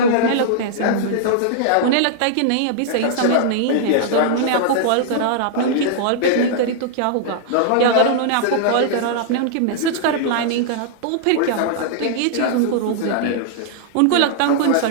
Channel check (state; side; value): different; both; correlation -0.01